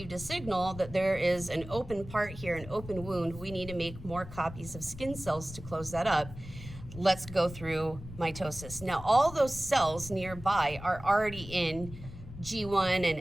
a signal that there is an open part here, an open wound. We need to make more copies of skin cells to close that up. Let's go through mitosis. Now, all those cells nearby are already in G1 and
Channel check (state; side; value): noise; left; rumble, 13 dB below the sound